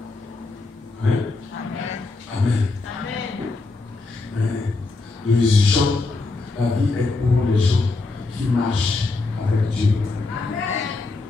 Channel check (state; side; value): quieter; right; 3.6 dB